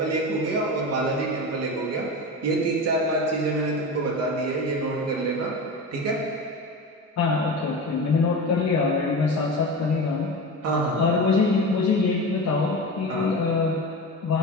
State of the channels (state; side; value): normal; both; correlation 0.27